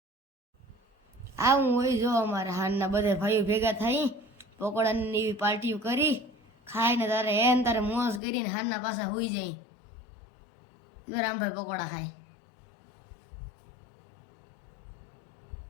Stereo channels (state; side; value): drops out; right; at 8.2 s